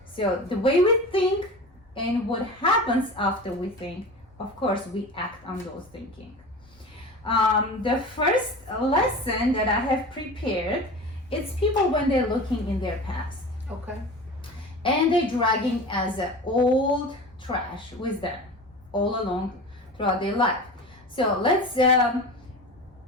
So the way we think and what happens after we think, of course, we act on those thinking. The first lesson that I have prepared, it's people when they're looking in their past. Okay. And they're dragging as an old trash with them all along throughout their life. So let's,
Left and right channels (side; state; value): both; normal; correlation 0.33